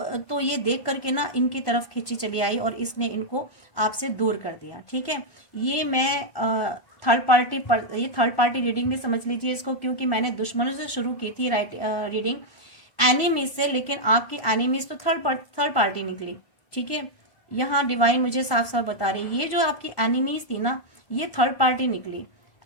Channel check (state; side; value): late; right; 1.1 ms